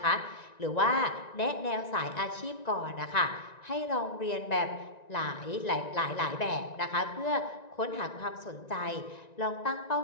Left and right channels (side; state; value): right; late; 1.9 ms